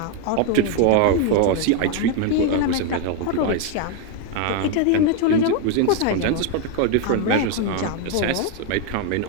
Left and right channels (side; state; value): both; different; correlation 0.01